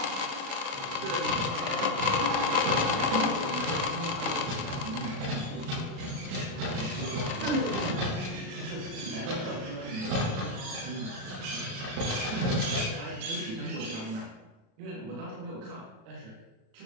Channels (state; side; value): late; left; 37 ms